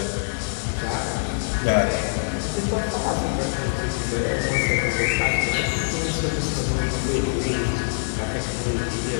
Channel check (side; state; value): right; silent; digital silence